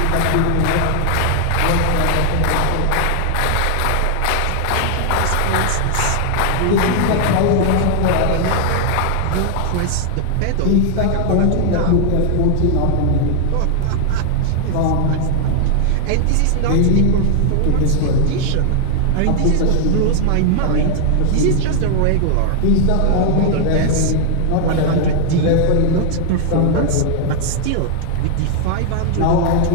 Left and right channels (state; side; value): different; both; correlation 0.00